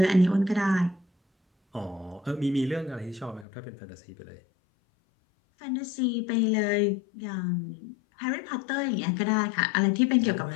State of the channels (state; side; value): drops out; right; at 3.5 s